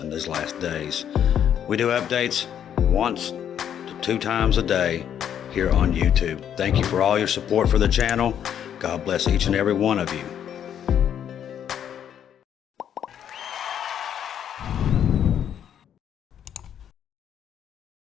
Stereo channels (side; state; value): right; quieter; 9.4 dB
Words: these last days. We do updates once to 2 times a day here on YouTube. Thank you for all your support for the channel. God bless each and every one of you.